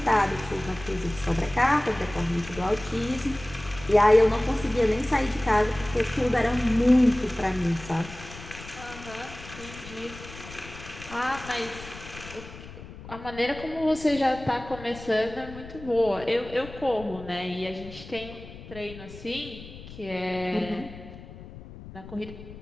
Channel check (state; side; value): noise; left; rumble, 15 dB below the sound